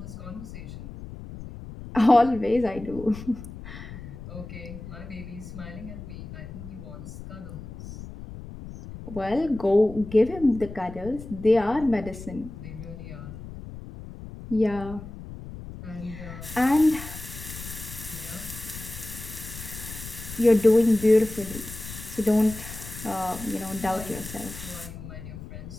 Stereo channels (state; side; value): noise; left; rumble, 12 dB below the sound